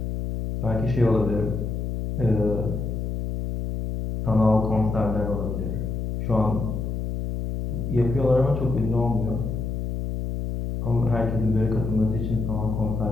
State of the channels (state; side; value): noise; left; hum, 3 dB below the sound